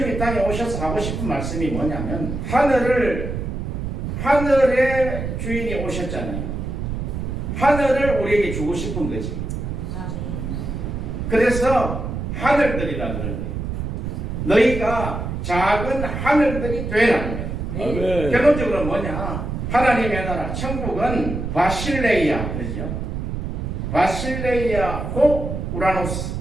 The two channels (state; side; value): noise; right; rumble, 4 dB below the sound